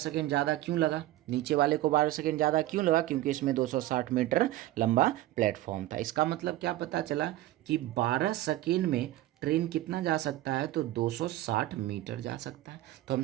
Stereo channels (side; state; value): left; quieter; 15.7 dB